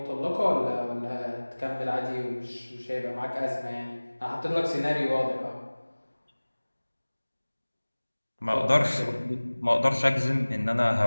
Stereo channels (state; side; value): inverted; both; correlation -1.00